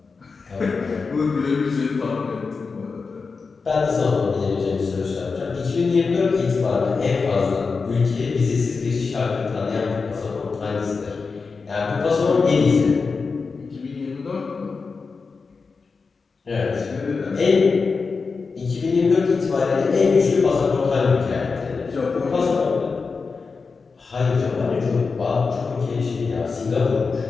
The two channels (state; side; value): quieter; right; 4.7 dB